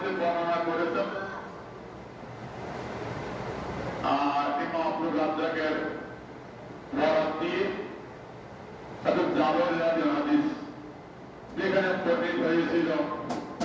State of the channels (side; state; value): both; identical; correlation 1.00